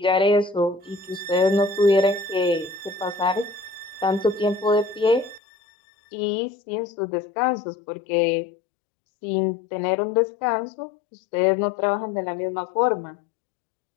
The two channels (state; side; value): drops out; right; at 5.4 s